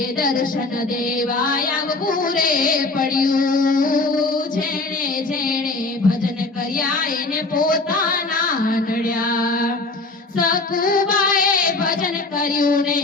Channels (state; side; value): quieter; right; 3.3 dB